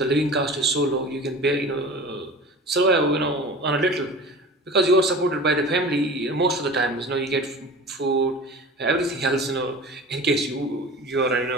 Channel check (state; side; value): normal; both; correlation 0.37